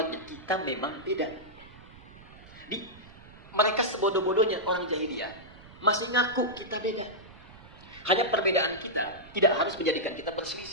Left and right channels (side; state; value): right; noise; rumble, 20 dB below the sound